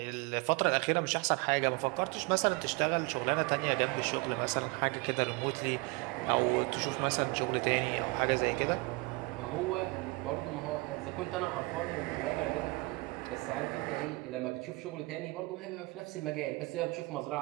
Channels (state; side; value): quieter; left; 25.7 dB